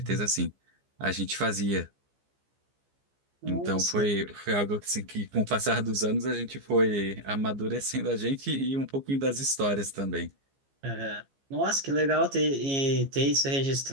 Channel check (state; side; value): late; left; 15 ms